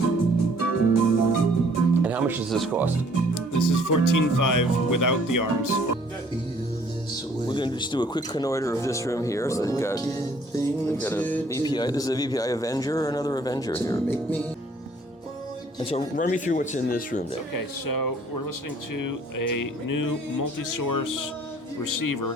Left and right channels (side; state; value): both; normal; correlation 0.59